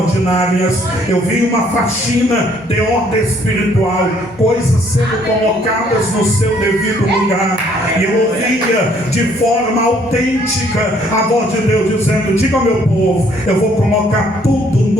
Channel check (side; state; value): both; normal; correlation 0.63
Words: Eu vi uma faxina de ordem espiritual, coisas sendo colocadas no seu devido lugar, e eu ouvia de forma autêntica a voz de Deus dizendo: diga ao meu povo, eu vou colocar tudo